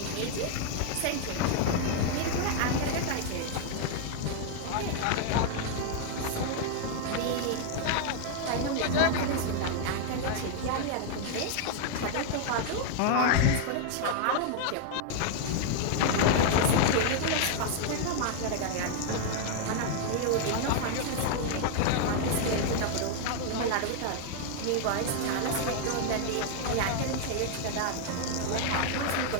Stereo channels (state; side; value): different; both; correlation 0.00